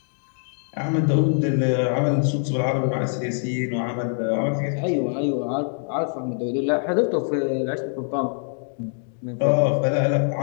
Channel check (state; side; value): silent; right; digital silence